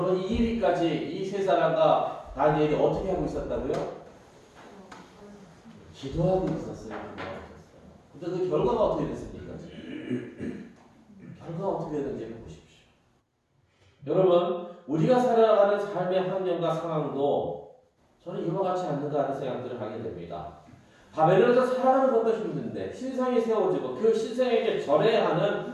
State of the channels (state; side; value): identical; both; correlation 1.00